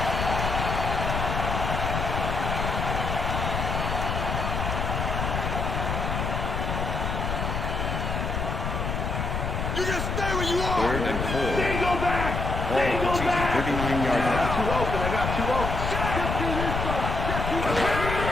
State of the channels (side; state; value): left; noise; rumble, 2 dB below the sound